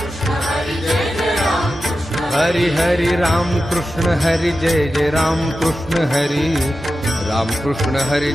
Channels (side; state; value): both; normal; correlation 0.92